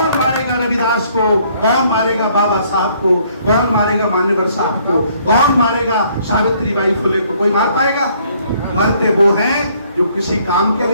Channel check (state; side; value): inverted; both; correlation -0.64